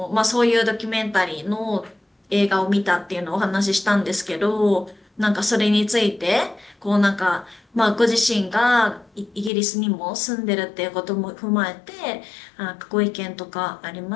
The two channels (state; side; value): drops out; right; at 9.5 s